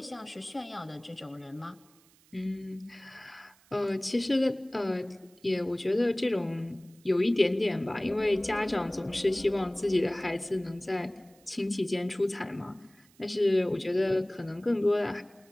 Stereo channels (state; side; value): noise; right; hiss, 30 dB below the sound